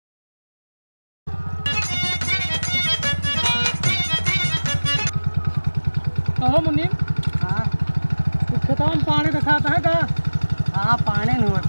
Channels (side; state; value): both; inverted; correlation -1.00